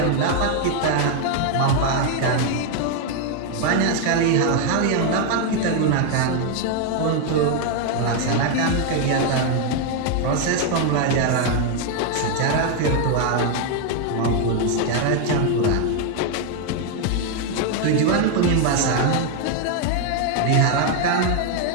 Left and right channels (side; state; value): both; different; correlation 0.01